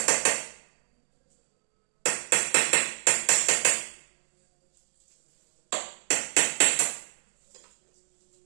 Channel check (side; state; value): left; silent; digital silence